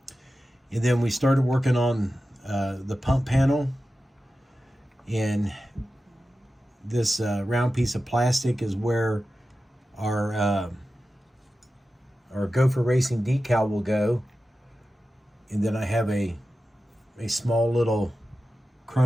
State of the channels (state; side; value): normal; both; correlation 0.93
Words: And then we started working on the pump panel. And this round piece of plastic is where our Gopher Racing decal will go. And then I have a small little